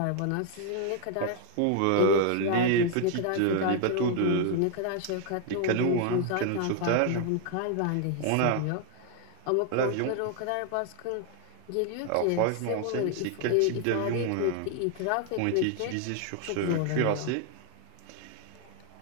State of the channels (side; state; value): both; different; correlation 0.00